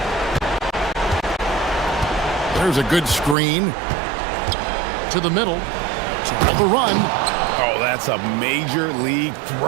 There's a good screen. To the middle. To the run. Oh, that's a major league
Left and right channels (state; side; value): drops out; left; at 3.4 s